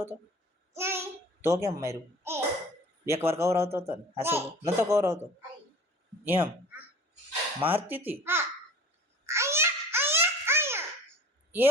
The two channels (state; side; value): normal; both; correlation 0.41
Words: તો? તો કેમ માર્યું? એકવાર કવરાવતો હતો ને? હાસુ નતો કવરાવતો? એમ મારતી હતી